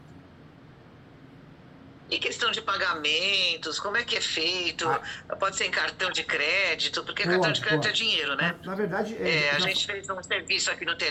E questão de pagamentos, como é que é feito? Pode ser em cartão de crédito, porque cartão de crédito é dinheiro, né? Na verdade... a gente fez um serviço aqui no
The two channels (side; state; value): both; identical; correlation 1.00